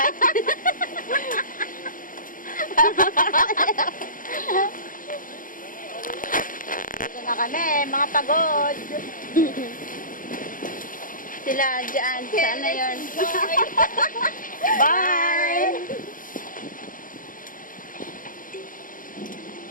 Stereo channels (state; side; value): late; right; 0.39 ms